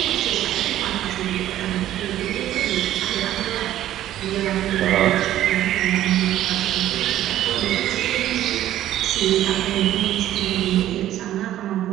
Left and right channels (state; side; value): quieter; left; 12.9 dB